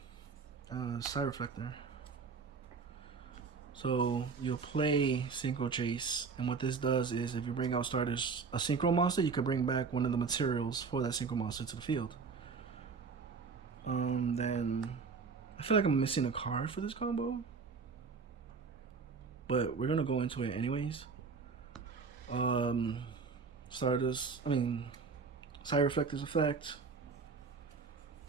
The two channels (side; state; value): left; quieter; 5.1 dB